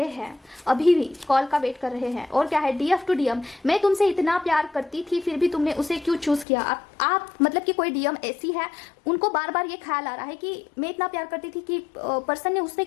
हैं, अभी भी कॉल का वेट कर रहे हैं। और क्या है, डीएफ टू डीएम, मैं तुमसे इतना प्यार करती थी फिर भी तुमने उसे क्यों चूज किया? आप मतलब कि कोई डीएम ऐसी है, उनको बार बार ये ख्याल आ रहा है कि मैं इतना प्यार करती थी कि पर्सन ने उससे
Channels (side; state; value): right; drops out; at 6.5 s